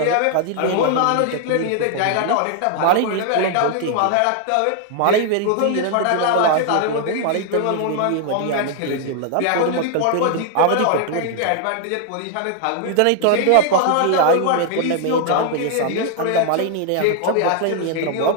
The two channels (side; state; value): both; different; correlation 0.00